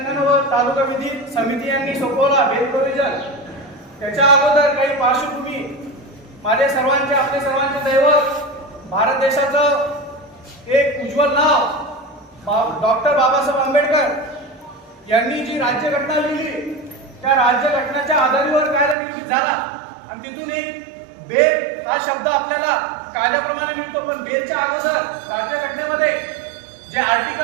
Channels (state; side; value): drops out; left; at 18.9 s